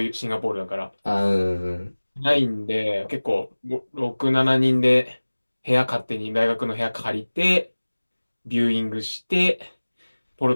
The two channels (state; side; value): inverted; both; correlation -1.00